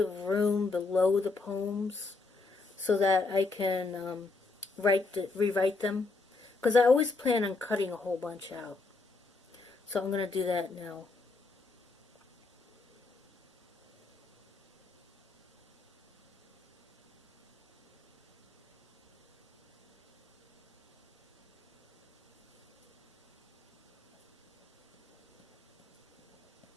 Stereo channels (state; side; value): quieter; right; 3.7 dB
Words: room below the poems so that I can rewrite them. Because I always plan on cutting a whole bunch out. So I'm going to do that now.